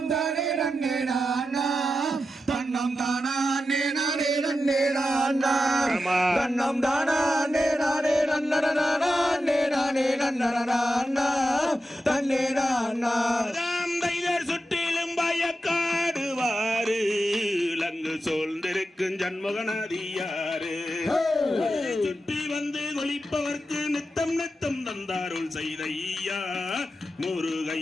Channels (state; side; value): normal; both; correlation 0.90